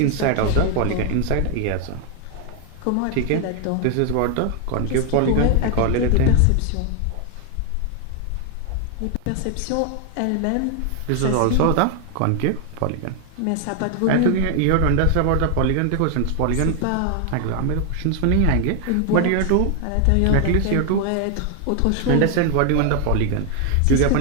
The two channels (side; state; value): both; different; correlation 0.00